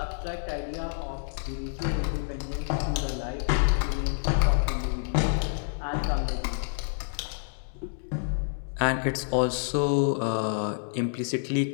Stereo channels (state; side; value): silent; right; digital silence